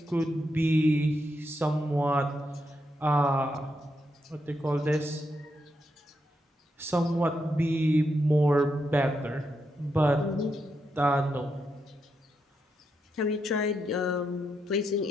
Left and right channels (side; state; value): both; normal; correlation 0.83